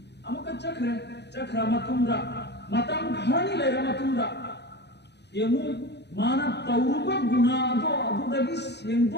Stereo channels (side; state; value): right; late; 0.50 ms